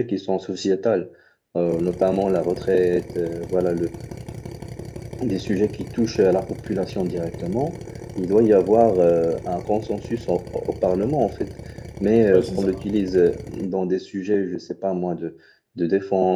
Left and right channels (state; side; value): identical; both; correlation 1.00